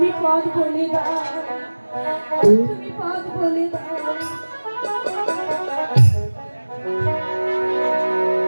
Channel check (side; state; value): both; inverted; correlation -1.00